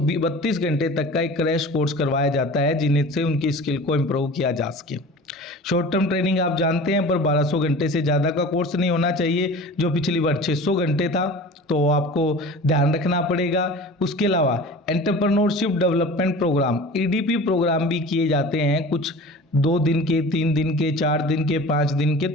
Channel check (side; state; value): both; normal; correlation 0.38